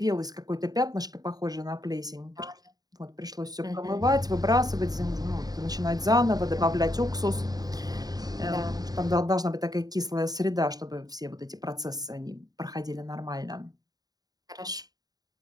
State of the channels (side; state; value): left; late; 0.18 ms